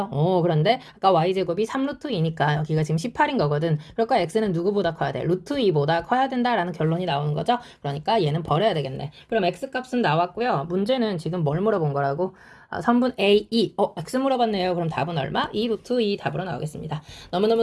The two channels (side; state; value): both; identical; correlation 1.00